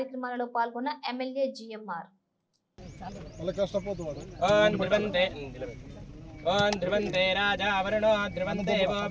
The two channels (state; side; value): identical; both; correlation 1.00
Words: పాల్గొన్న ఎమ్మెల్యే జిఎంఆర్. ధ్రువంతే రాజా వరుణో ధ్రువందేవో